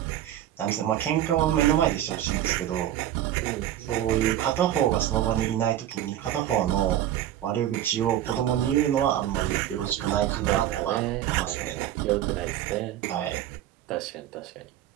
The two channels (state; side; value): quieter; left; 12.1 dB